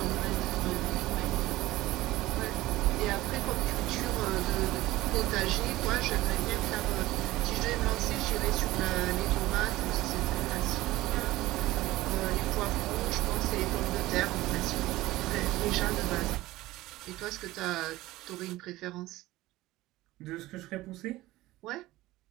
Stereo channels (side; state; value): left; quieter; 17.6 dB